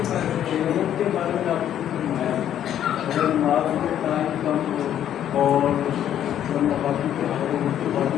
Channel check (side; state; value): right; quieter; 10.6 dB